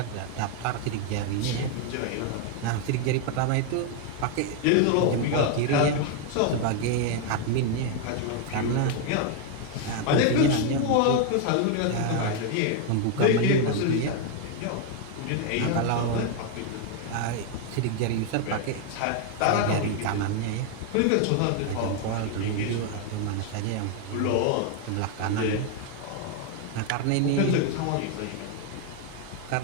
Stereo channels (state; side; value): different; both; correlation 0.01